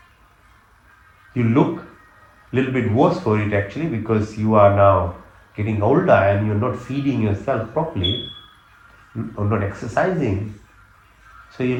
You look a little bit worse for it actually, because you are now getting older and you're not feeding yourself properly or not exercising. So you're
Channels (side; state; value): both; identical; correlation 1.00